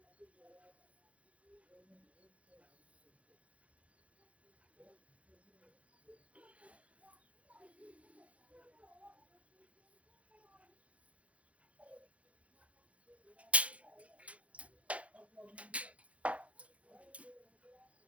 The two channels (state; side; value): late; left; 0.064 ms